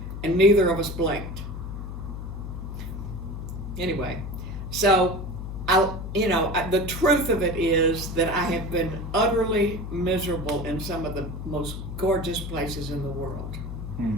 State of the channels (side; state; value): left; noise; hum, 7 dB below the sound